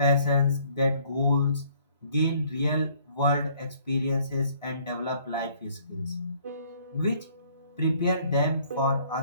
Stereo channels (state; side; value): inverted; both; correlation -0.60